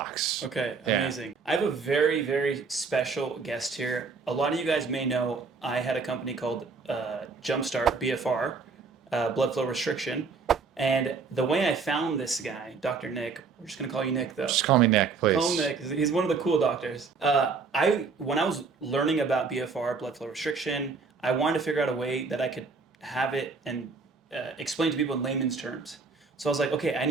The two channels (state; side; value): quieter; left; 4.7 dB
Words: Okay, Yeah. amazing. I have a very, very special guest here. A lot of you guys may know I had a company called Jumpstart, BFR, blood flow restriction. And the way I found this guy, Dr. Nick, we're just going to call you Nick though. Just call me Nick, Call him please. Nick. He's one of the cool doctors. When I was learning about BFR, blood flow restriction, I wanted to figure out a way that I could have it and explain to people in layman's terms. So I was like, okay, I